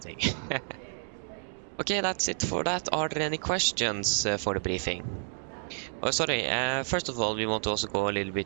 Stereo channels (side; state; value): left; silent; digital silence